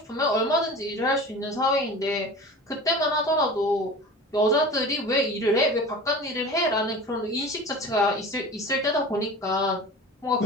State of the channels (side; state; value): both; normal; correlation 0.37